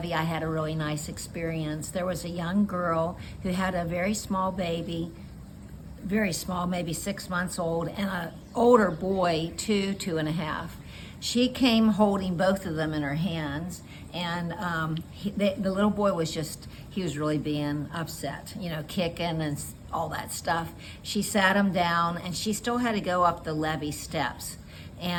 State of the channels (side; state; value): both; identical; correlation 1.00